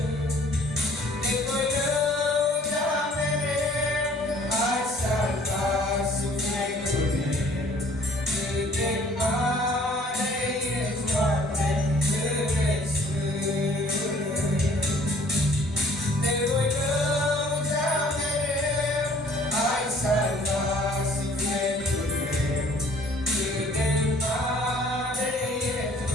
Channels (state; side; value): normal; both; correlation 0.56